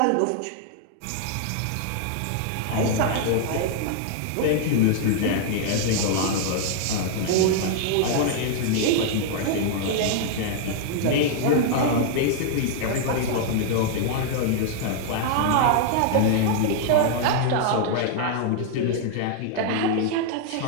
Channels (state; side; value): different; both; correlation 0.00